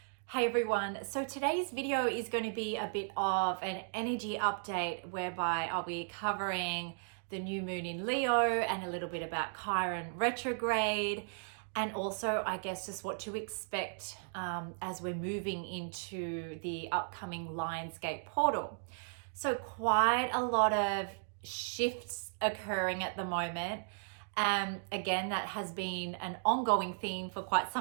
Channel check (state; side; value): silent; left; digital silence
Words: Hey everyone, so today's video is going to be a bit of an energy update whereby I'll be covering the new moon in Leo and a little bit about Chiron Retrograde, and also I guess just what to expect as we're moving into the upcoming Lionsgate portal. So quite a lot of shifts occurring at the moment. Again, that has been an ongoing theme for quite